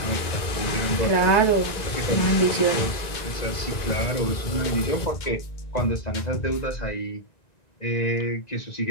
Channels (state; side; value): late; right; 1.9 ms